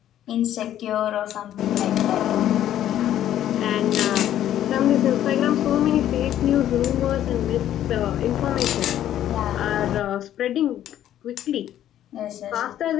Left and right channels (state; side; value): quieter; right; 11.7 dB